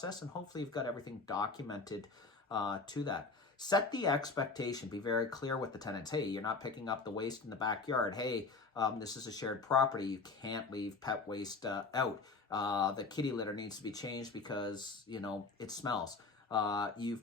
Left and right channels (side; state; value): right; quieter; 4.1 dB